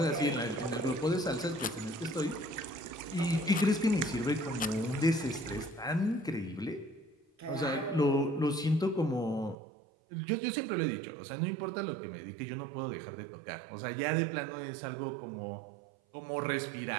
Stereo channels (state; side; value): drops out; left; at 9.6 s